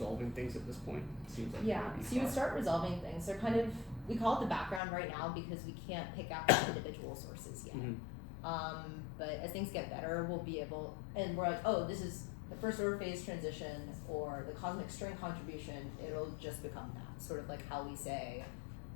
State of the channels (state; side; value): drops out; right; at 4.8 s